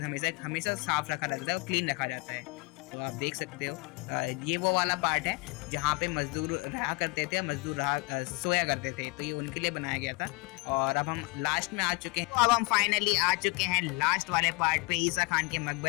हमेशा साफ़ रखा जाता है और क्लीन रखा जाता है। तो आप देख सकते हो ये वो वाला पार्ट है जहाँ पे मजदूर रहा करते थे, मजदूर सोया करते थे। तो ये उनके लिए बनाया गया था। और अब हम लास्ट में आ चुके हैं। तो अब हम फाइनली आ चुके हैं लास्ट वाले पार्ट पे, ईसा खान के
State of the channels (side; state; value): right; quieter; 25.8 dB